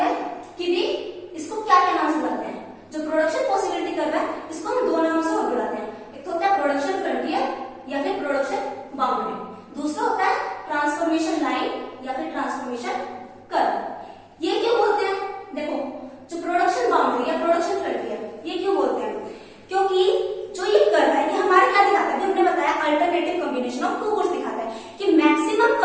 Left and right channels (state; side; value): identical; both; correlation 1.00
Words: है कि भी इसको क्या क्या नाम से बुलाते हैं। जो प्रोडक्शन पॉसिबिलिटी कर्व है इसको हम 2 नामों से और बुलाते हैं। एक तो होता है प्रोडक्शन फ्रंटियर या फिर प्रोडक्शन बाउंड्री, दूसरा होता है ट्रांसफॉर्मेशन लाइन या फिर ट्रांसफॉर्मेशन कर्व। ये क्यों बोलते हैं? देखो, जो प्रोडक्शन बाउंड्री या प्रोडक्शन फ्रंटियर ये क्यों बोलते हैं? क्योंकि जो ये कर्व है ये हमारे क्या दिखाता है? हमने बताया अल्टरनेटिव कॉम्बिनेशन ऑफ 2 गुड्स दिखाता है कि मैक्सिमम